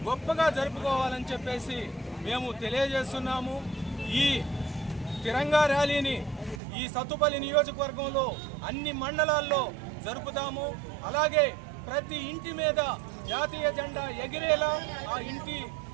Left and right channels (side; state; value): left; drops out; at 6.6 s